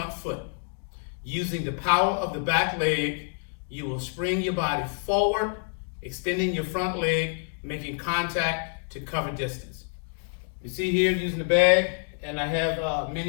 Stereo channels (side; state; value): right; silent; 60 dB below the other